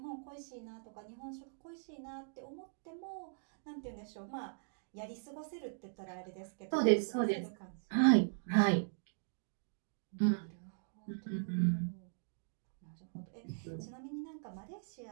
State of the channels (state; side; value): silent; left; digital silence